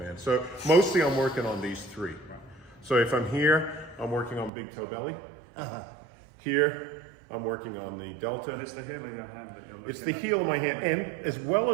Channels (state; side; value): drops out; left; at 4.5 s